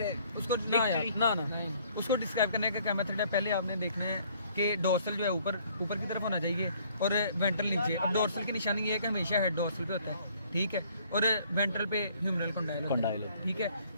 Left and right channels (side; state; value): both; inverted; correlation -0.60